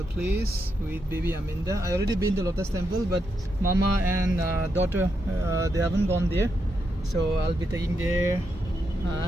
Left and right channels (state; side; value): normal; both; correlation 0.83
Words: place with baby Aminda. I already been to Lotus Temple, but Mama and daughter they haven't gone there, so I'll be taking there.